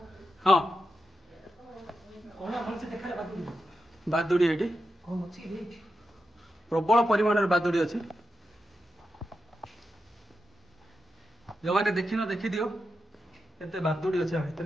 हाँ बादुड़ी ये प्रबल परिमाण बादुड़ी अच्छी जो मैंने देखिन देखी दियो केते बादुड़ी अच्छे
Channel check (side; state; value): both; normal; correlation 0.89